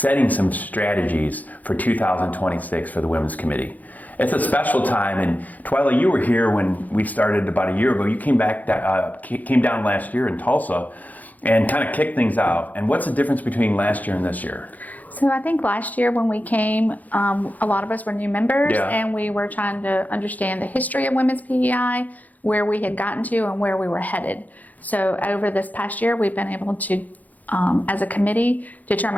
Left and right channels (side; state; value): right; late; 0.080 ms